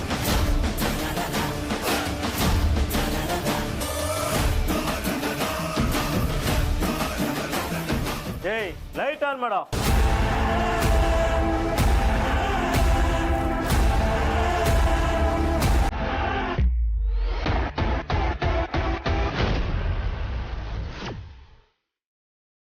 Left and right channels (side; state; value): both; identical; correlation 1.00